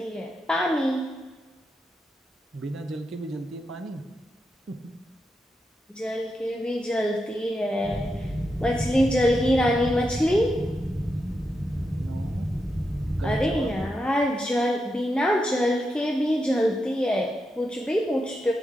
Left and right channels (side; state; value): both; normal; correlation 0.86